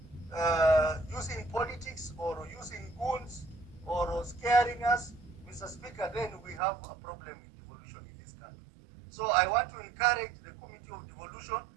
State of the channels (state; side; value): drops out; left; at 6.6 s